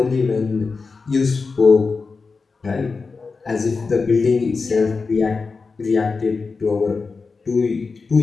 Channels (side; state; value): right; quieter; 4.5 dB